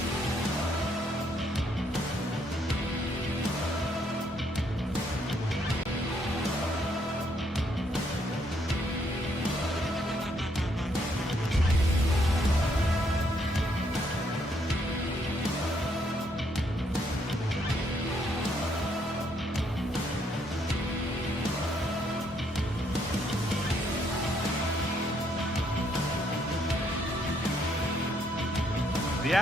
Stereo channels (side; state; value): both; normal; correlation 0.71